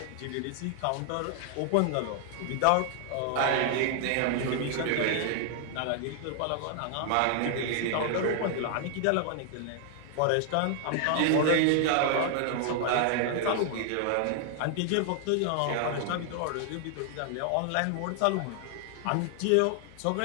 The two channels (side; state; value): both; different; correlation 0.00